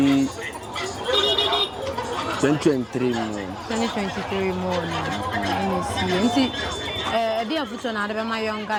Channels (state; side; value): identical; both; correlation 1.00